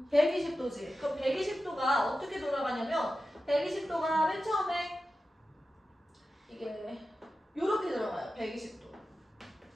120도지. 그럼 120도가 어떻게 돌아가냐면 120도가 맨 처음에 이게 요렇게 들어가요. 120도.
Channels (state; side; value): normal; both; correlation 0.93